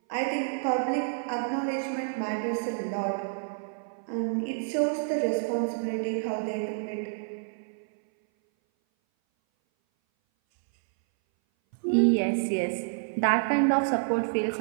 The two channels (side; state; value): left; silent; 58 dB below the other